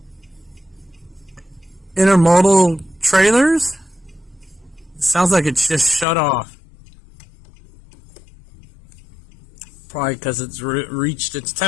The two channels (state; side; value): drops out; right; at 6.1 s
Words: intermodal trailers. It sounds like it's just shut off. Probably because it's reached its